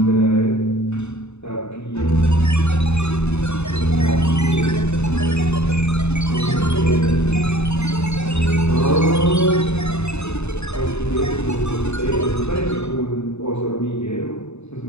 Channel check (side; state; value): right; late; 0.81 ms